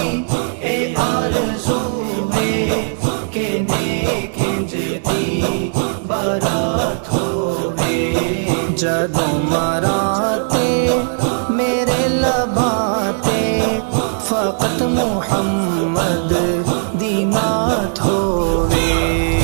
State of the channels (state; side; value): silent; left; 68 dB below the other